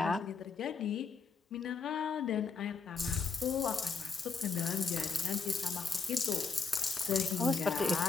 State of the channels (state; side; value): quieter; right; 4.8 dB